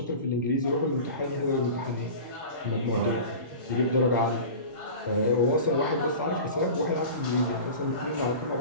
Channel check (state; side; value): inverted; both; correlation -0.35